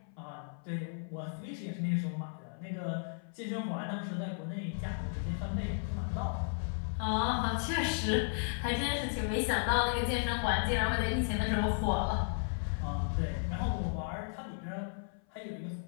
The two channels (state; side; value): silent; right; 55 dB below the other